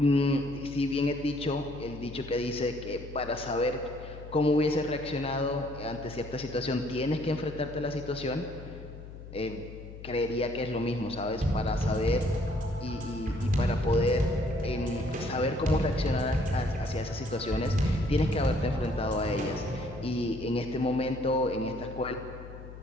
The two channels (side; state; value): left; noise; hum, 14 dB below the sound